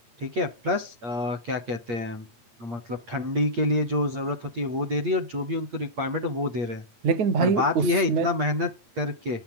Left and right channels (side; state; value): left; late; 8.5 ms